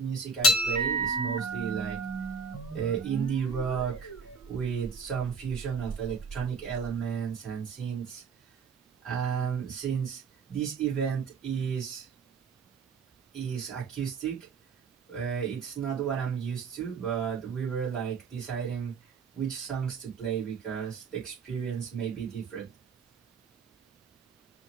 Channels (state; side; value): quieter; left; 5.0 dB